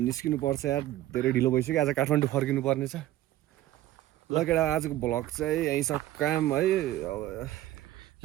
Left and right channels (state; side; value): quieter; left; 14.9 dB